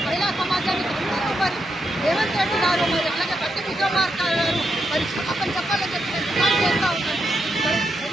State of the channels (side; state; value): both; normal; correlation 0.83